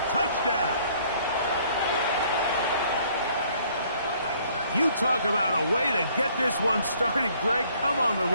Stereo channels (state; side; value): inverted; both; correlation -0.61